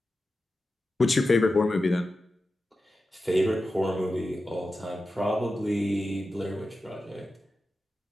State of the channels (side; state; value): both; normal; correlation 0.92